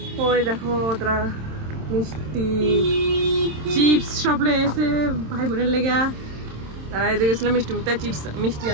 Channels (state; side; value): late; left; 27 ms